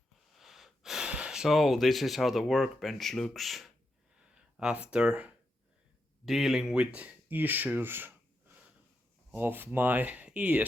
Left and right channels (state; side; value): normal; both; correlation 0.84